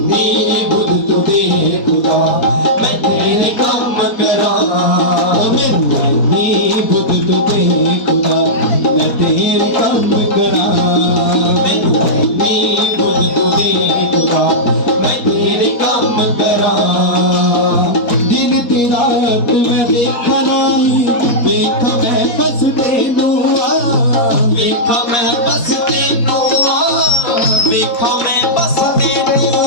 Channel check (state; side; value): late; right; 4.2 ms